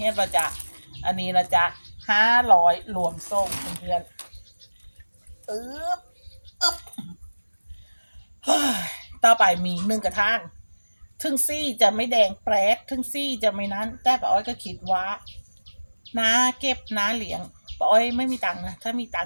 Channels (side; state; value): both; inverted; correlation -1.00